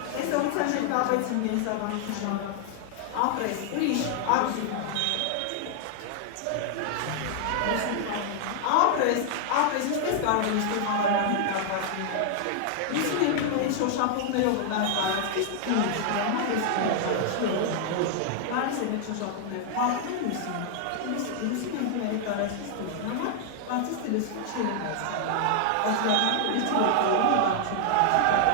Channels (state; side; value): different; both; correlation 0.00